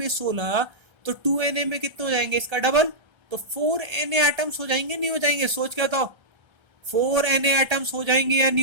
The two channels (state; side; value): late; left; 1.3 ms